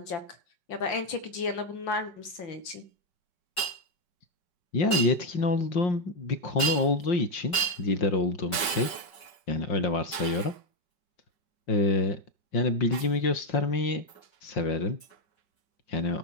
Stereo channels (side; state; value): right; late; 5.3 ms